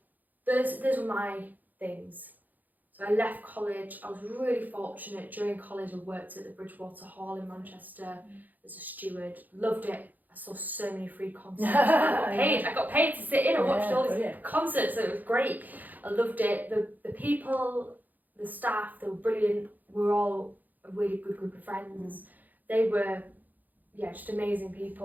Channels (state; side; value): late; left; 0.083 ms